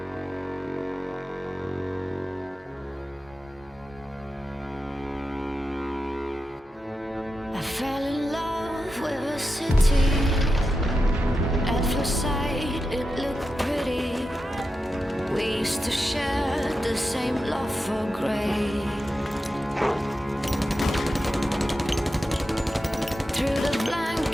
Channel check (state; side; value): normal; both; correlation 0.90